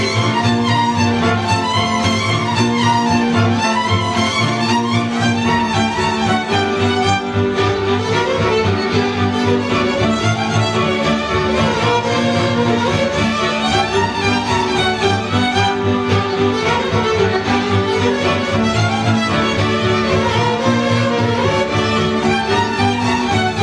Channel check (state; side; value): identical; both; correlation 1.00